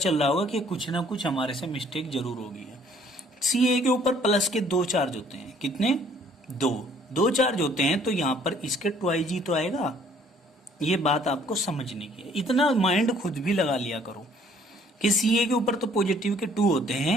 रहा होगा कि कुछ ना कुछ हमारे से मिस्टेक जरूर होगी है। Ca के ऊपर प्लस के 2 चार्ज होते हैं। कितने? 2 चार्ज होते हैं, तो यहां पर इसके 2Ig तो आएगा। ये बात आपको समझने की है, इतना माइंड खुद भी लगा लिया करो कि Ca के ऊपर तो पॉजिटिव के 2 होते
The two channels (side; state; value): both; normal; correlation 0.60